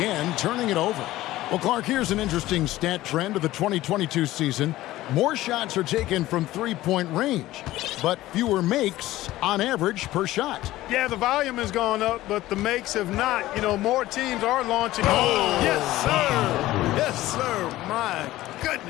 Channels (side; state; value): right; quieter; 16.2 dB